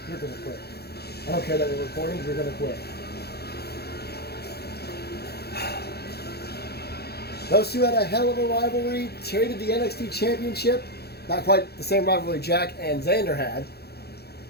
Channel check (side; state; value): right; late; 0.47 ms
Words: You're going to quit. I don't care that we're recording. You're going to quit. Those two had a hell of a rivalry. Traded the NXT Championship. Not quite the same rivalry Jack and Xander had.